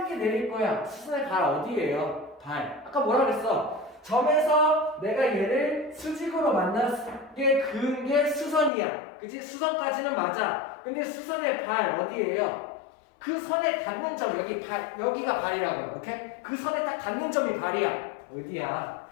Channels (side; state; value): right; drops out; at 8.7 s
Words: 내릴 거야. 수선의 발 어디예요? 발. 아까 뭐라 그랬어? 점에서 내가 얘를 수직으로 만나게 그은 게 수선이야. 그치? 수선까지는 맞아. 근데 수선의 발 어디예요? 그 선에 닿는 점, 여기가 발이라고. 오케이? 그 선에 딱 닿는 점이 발이야. 어디야?